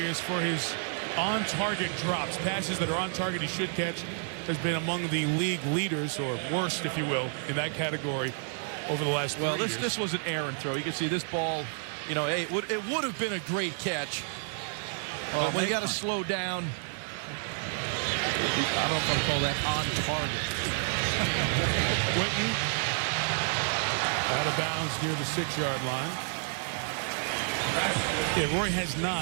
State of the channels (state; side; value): silent; left; 58 dB below the other